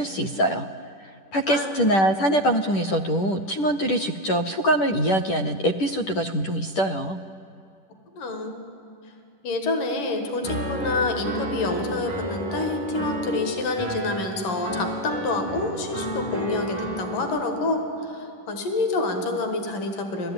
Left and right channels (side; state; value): right; late; 10 ms